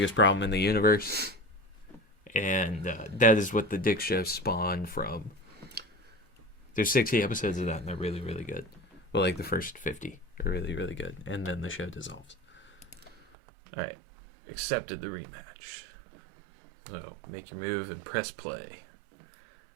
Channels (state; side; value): drops out; left; at 13.2 s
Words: Problem in the Universe. And that is what the Dick Show spawned from. There's 60 episodes of that, and they're really, really good. Well, like the first 50. are really, really good. And then the show dissolves. All right. Accepted the rematch. So make your move and press play.